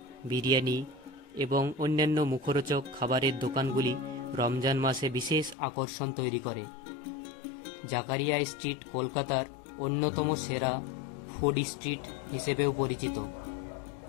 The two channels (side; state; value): right; drops out; at 5.6 s